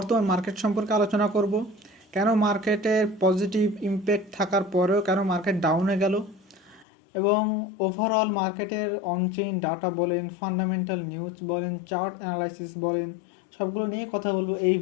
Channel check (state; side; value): drops out; right; at 6.9 s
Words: market সম্পর্কে আলোচনা করব। কেন মার্কেটের পজিটিভ ইমপ্যাক্ট থাকার পরেও কেন মার্কেট ডাউনে গেল এবং ওভারঅল মার্কেটের অনচেইন ডাটা বলেন, ফান্ডামেন্টাল নিউজ বলেন, চার্ট অ্যানালাইসিস বলেন, সবগুলো নিয়ে কথা বলবো এই